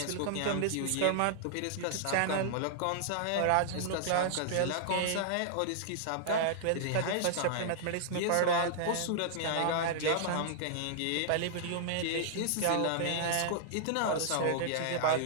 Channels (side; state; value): both; different; correlation -0.01